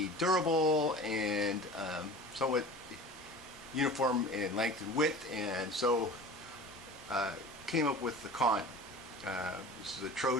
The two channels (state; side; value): normal; both; correlation 0.38